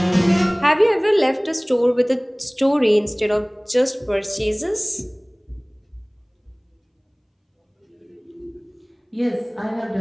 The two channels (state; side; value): identical; both; correlation 1.00